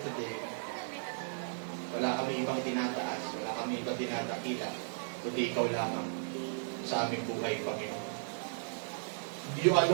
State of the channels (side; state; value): left; silent; 54 dB below the other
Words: Wala kami ibang tinataas, wala kami ibang tinatakila, kundi ikaw lamang sa aming buhay, Panginoon. You